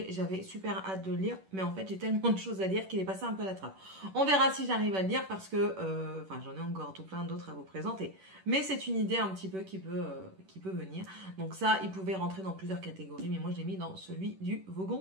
j'avais super hâte de le lire. Mais en fait, j'ai tellement de choses à lire qu'il est passé un peu à la trappe. On verra si j'arrive à le lire parce que, j'en ai encore tout plein d'autres à vous présenter. Mais c'est une idée un petit peu qui peut venir. Donc ça, il pouvait rentrer dans plusieurs catégories. Mais moi, je l'ai mis dans celui du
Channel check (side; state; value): left; late; 11 ms